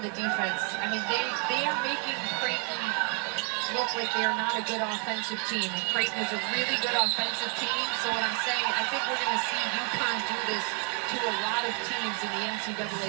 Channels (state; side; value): quieter; left; 36.2 dB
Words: the defense. I mean, they are making Creighton look like they are not a good offensive team. And Creighton is a really good offensive team. So what I'm saying, I think we're going to see UConn do this to a lot of teams in the NCAA